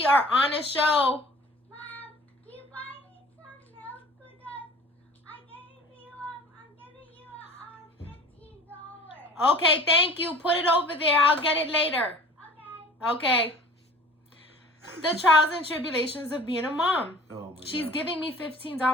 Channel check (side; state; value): both; normal; correlation 0.45